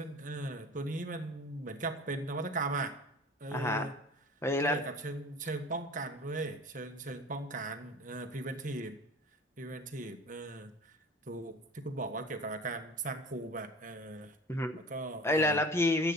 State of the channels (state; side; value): normal; both; correlation 0.41